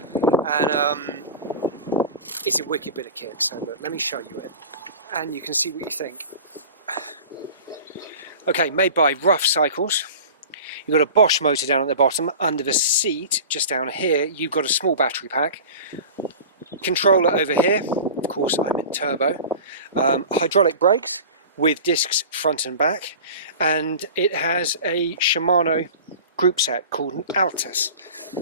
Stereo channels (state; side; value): inverted; both; correlation -0.36